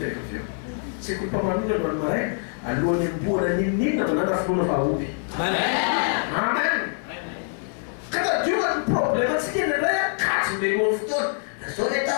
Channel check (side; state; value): right; silent; 56 dB below the other